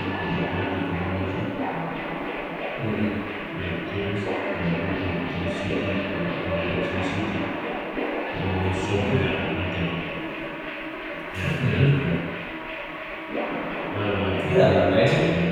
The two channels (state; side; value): identical; both; correlation 1.00